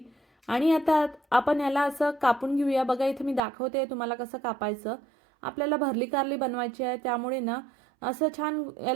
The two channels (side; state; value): left; drops out; at 3.4 s